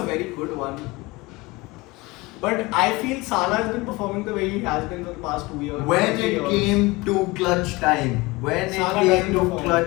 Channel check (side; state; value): right; quieter; 22.4 dB